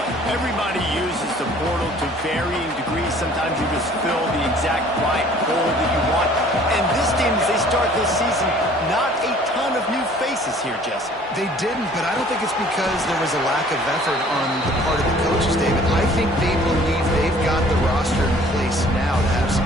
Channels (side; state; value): both; normal; correlation 0.53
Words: Everybody uses the portal to varying degrees. Sometimes you just fill the exact right hole that you want. And this team, as they start this season, not a ton of new faces here, Jesse. They didn't, but I don't think it's because there was a lack of effort on the part of the coaches, David. I think they believe they've got the roster in place now to have